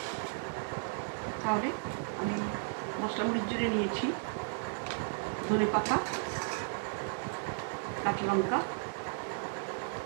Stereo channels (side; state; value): left; silent; digital silence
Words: তাহলে আমি মশলা মুড়ির জন্য নিয়েছি ধনে পাতা, কাঁচা লঙ্কা,